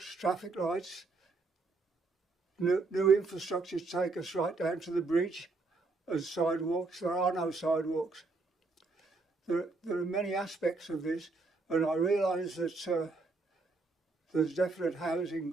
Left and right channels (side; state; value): left; quieter; 3.7 dB